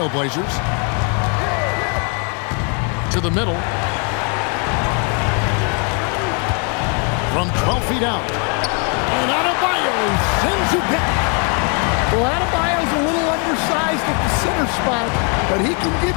To the middle. From 12 feet out. And Adebayo sends it back. Well, Adebayo's a little undersized at the center spot, but he can give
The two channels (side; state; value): right; quieter; 36.2 dB